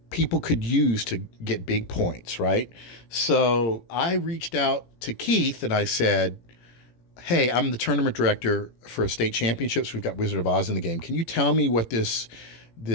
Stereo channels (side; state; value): right; late; 17 ms